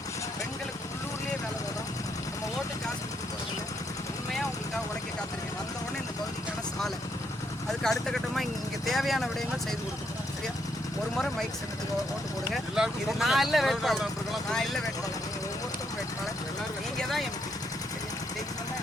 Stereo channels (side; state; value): both; normal; correlation 0.75